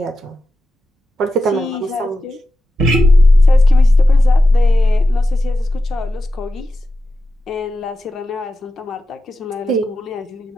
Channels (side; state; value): both; normal; correlation 0.91